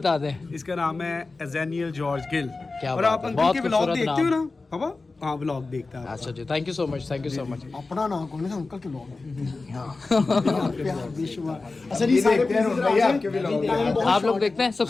दें। इसका नाम है एजेनियल जॉर्ज गिल। क्या और बात आप है, अंकल बहुत के व्लॉग खूबसूरत देखते हो नाम। ना पापा? हाँ व्लॉग देखता है। अच्छा जी थैंक यू सो मच अपना नाम कौन है अंकल के लोग आप लोग देखते हैं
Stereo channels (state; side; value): quieter; right; 3.7 dB